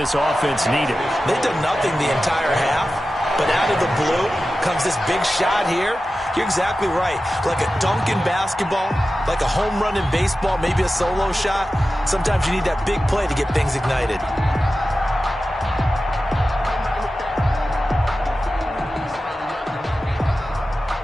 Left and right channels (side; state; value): both; normal; correlation 0.94